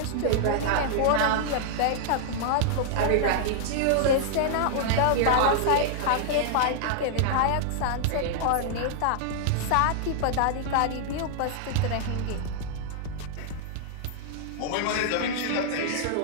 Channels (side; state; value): both; different; correlation -0.01